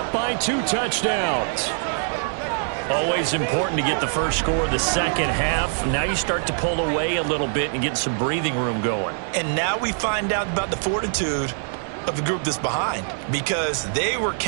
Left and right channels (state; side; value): silent; left; 63 dB below the other